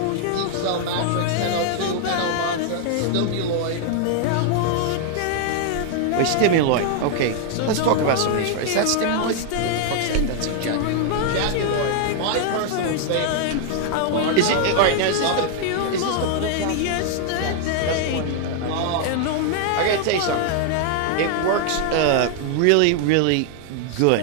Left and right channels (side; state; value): both; different; correlation 0.00